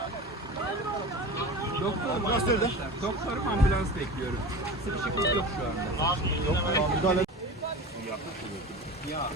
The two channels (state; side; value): normal; both; correlation 0.32